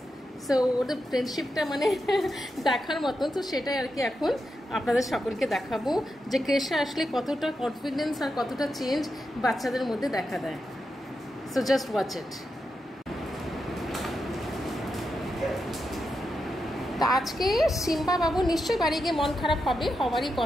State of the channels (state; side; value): normal; both; correlation 0.87